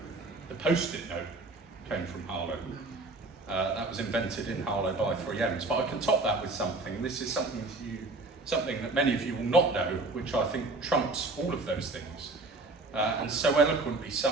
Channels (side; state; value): left; quieter; 3.2 dB